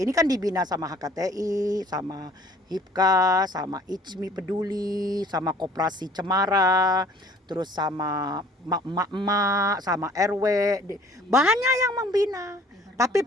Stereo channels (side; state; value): both; normal; correlation 0.53